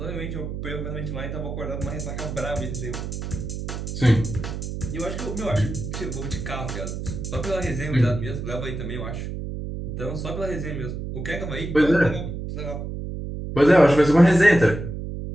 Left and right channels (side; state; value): right; noise; hum, 6 dB below the sound